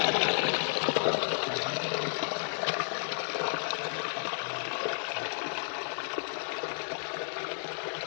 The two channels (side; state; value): right; silent; digital silence